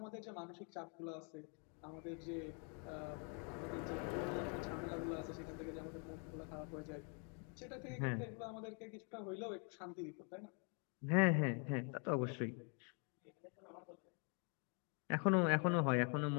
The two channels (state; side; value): quieter; right; 38.7 dB